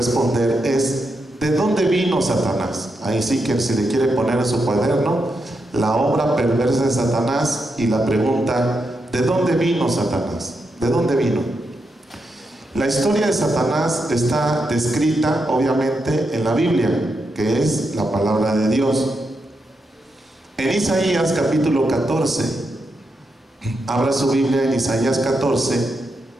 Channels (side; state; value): both; normal; correlation 0.84